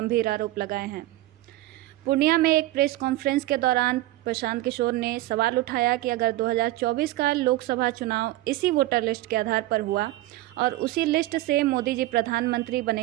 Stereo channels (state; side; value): quieter; left; 16.7 dB